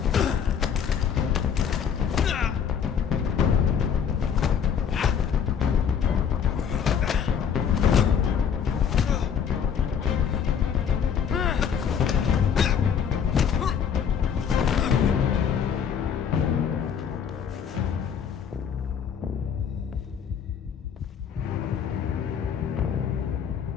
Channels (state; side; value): quieter; right; 7.6 dB